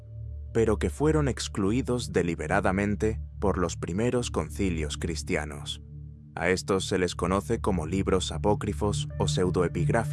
pero que fueron excluidos deliberadamente por los primeros concilios cristianos. A estos se les conoce como libros apócrifos o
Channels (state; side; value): identical; both; correlation 1.00